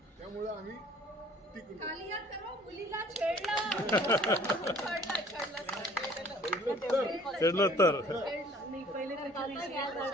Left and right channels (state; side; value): normal; both; correlation 0.54